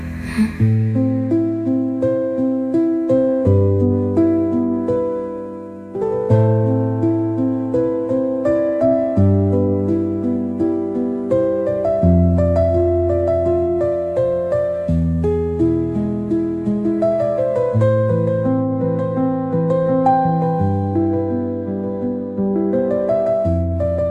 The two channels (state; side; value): identical; both; correlation 1.00